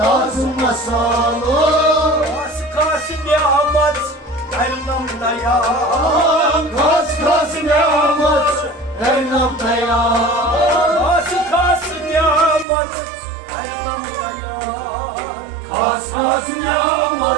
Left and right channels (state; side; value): drops out; left; at 12.7 s